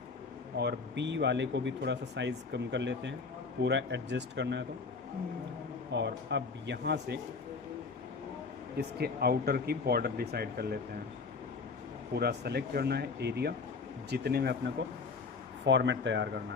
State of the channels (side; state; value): right; quieter; 4.6 dB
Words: और बी वाले को भी थोड़ा सा साइज़ कम कर लेते हैं, पूरा एडजस्ट करना है तो। और अब यहाँ से इसके आउटर की बॉर्डर डिसाइड कर लेते हैं। पूरा सेलेक्ट करना है एरिया जितने में अपने को फॉर्मेट तैयार करना